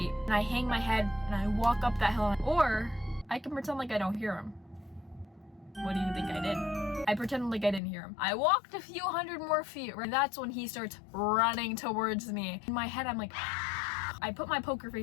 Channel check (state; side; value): drops out; right; at 7.8 s